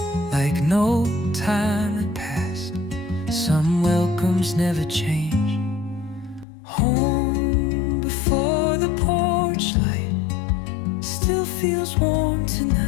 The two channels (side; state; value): right; drops out; at 6.5 s